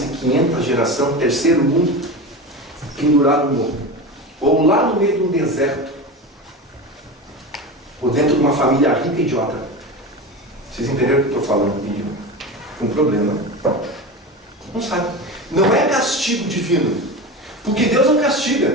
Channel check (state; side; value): normal; both; correlation 0.26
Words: de 500 geração, terceiro mundo, pendurado no morro. Ou lá no meio de um deserto. Ou dentro de uma família rica e idiota. Vocês entenderam o que eu estou falando? Com problema. Não sabe. Não é castigo divino. Porque Deus não